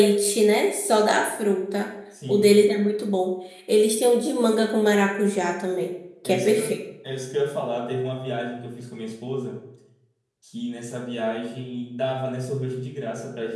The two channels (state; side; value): identical; both; correlation 1.00